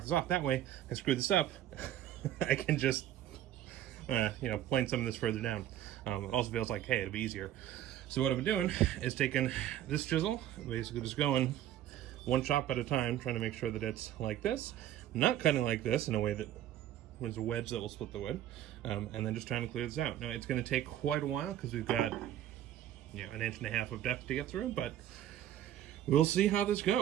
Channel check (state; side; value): quieter; left; 12.0 dB